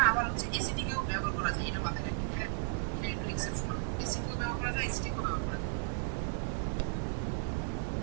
আবার হচ্ছে অ্যাসিডিকেও ব্যবহার করা যায়, এটা মাথায় রাখেন। হ্যাঁ, এটা একটু এক্সেপশনাল, বেসিকেও ব্যবহার করা যায়, অ্যাসিডিকেও ব্যবহার করা যায়।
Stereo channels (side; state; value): left; silent; digital silence